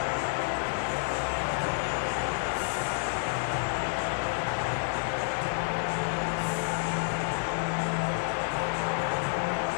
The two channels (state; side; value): silent; right; 58 dB below the other